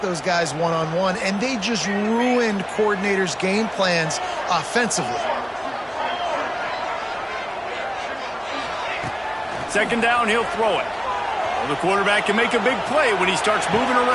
those guys one-on-one, and they just ruined coordinators' game plans offensively. Second down, he'll throw it. Well, the quarterback can make a big play when he starts moving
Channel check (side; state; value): both; identical; correlation 1.00